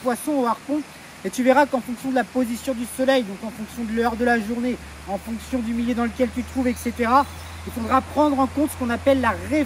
au harpon. Et tu verras qu'en fonction de la position du soleil, donc en fonction de l'heure de la journée, en fonction du milieu dans lequel tu te trouves, etc., il faudra prendre en compte ce qu'on appelle la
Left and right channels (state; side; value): identical; both; correlation 1.00